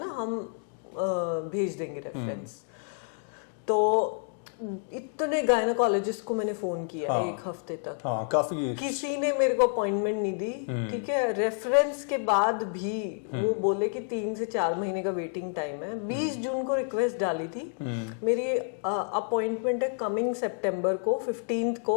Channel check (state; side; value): silent; right; 59 dB below the other